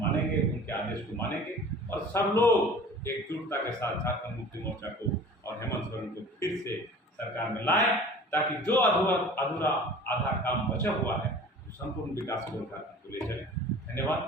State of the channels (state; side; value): normal; both; correlation 0.43